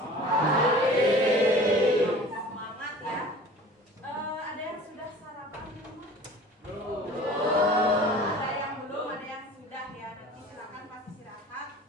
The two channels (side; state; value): both; normal; correlation 0.43